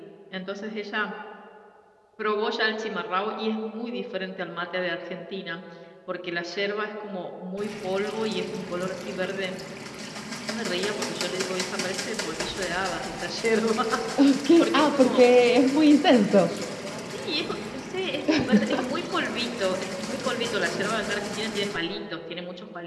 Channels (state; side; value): identical; both; correlation 1.00